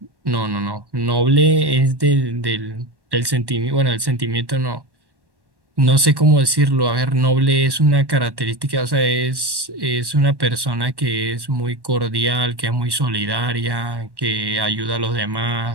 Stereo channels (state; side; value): late; left; 1.1 ms